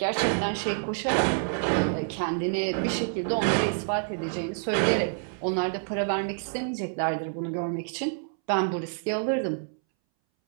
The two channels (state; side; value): silent; left; 60 dB below the other